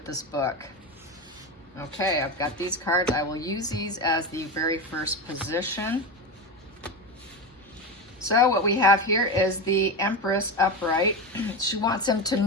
this book? Okay, I've got these cards. I will use these as the very first position. So what we have here is the Empress upright. She wants him to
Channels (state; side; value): normal; both; correlation 0.19